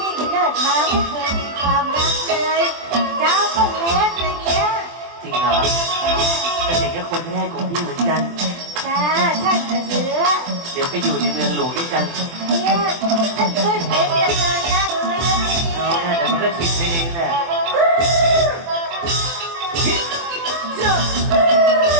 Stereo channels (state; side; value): late; left; 24 ms